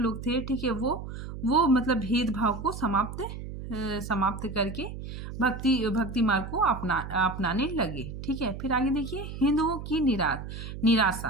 लोग थे, ठीक है, वो मतलब भेदभाव को समाप्त समाप्त करके भक्ति मार्ग को अपनाने लगे। ठीक है, फिर आगे देखिए हिंदुओं की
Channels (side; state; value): right; noise; hum, 9 dB below the sound